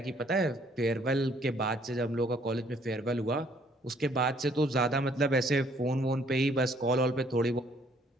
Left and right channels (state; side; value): normal; both; correlation 0.63